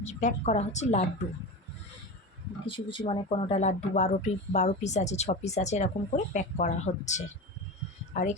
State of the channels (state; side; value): normal; both; correlation 0.26